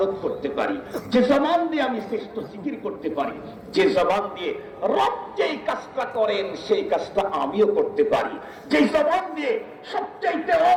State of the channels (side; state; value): both; identical; correlation 1.00